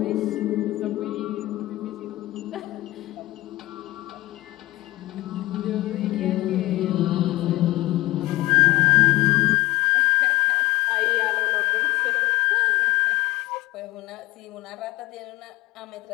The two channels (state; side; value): quieter; right; 18.5 dB